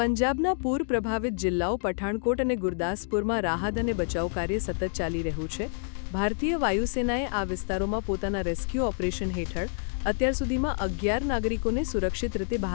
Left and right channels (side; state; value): right; silent; digital silence